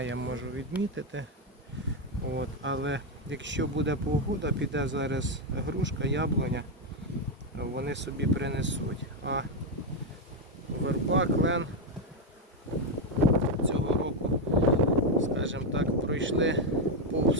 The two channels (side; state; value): both; normal; correlation 0.05